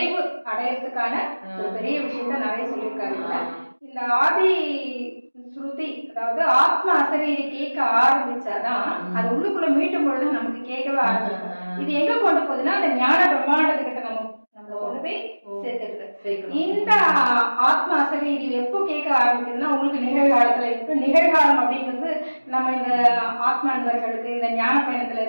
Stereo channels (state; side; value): inverted; both; correlation -1.00